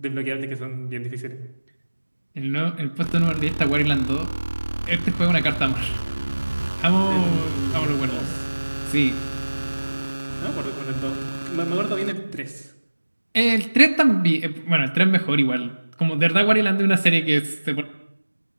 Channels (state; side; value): inverted; both; correlation -1.00